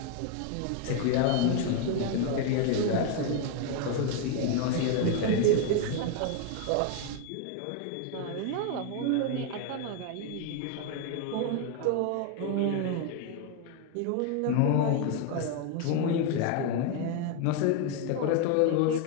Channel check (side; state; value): both; different; correlation 0.01